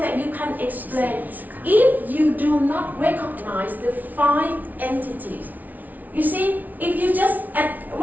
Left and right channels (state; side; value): late; left; 0.078 ms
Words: you can explain if you do not recognize the 5 entities. You see, if you just